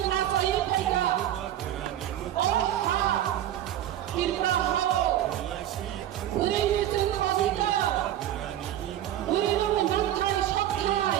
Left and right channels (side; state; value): left; quieter; 12.1 dB